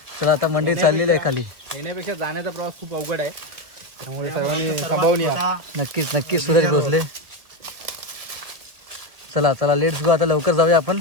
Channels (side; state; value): left; late; 1.4 ms